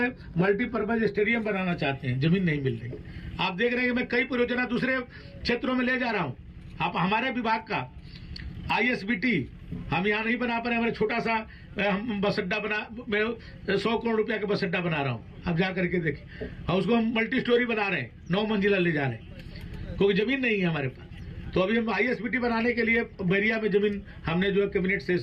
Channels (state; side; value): identical; both; correlation 1.00